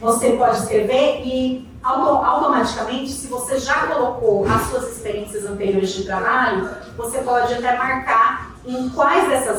escrever e automaticamente, se você já colocou as suas experiências anteriores de trabalho, você pode até marcar em quais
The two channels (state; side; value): identical; both; correlation 1.00